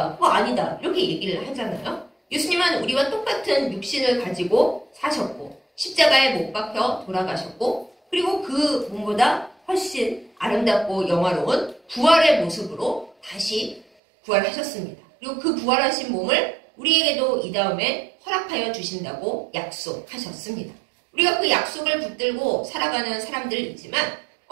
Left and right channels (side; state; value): left; drops out; at 13.9 s